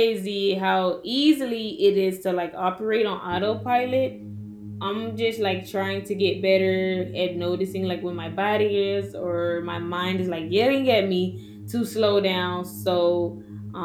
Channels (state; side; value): identical; both; correlation 1.00